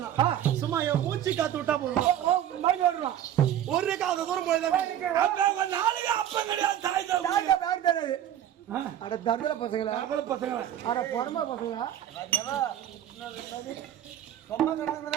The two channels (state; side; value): quieter; left; 11.1 dB